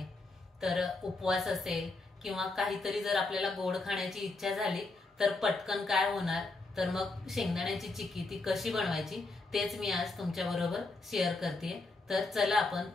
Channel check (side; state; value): right; quieter; 3.3 dB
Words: तर उपवास असेल किंवा काहीतरी जर आपल्याला गोड खाण्याची इच्छा झाली तर पटकन काय होणार, तर मग शेंगदाण्याची चिक्की ती कशी बनवायची तेच मी आज तुमच्या बरोबर शेअर करते। तर चला आपण